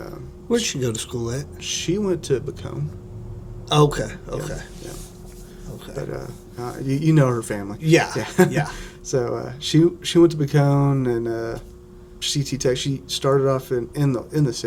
where'd she go to school at? She went to Bacone. Okay. Yeah. Okay. But you know her family. Yeah. So she went to Bacone, and CT tech. She started off in the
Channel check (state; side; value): identical; both; correlation 1.00